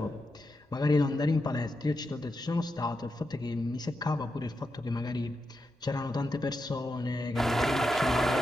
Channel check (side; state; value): both; normal; correlation 0.87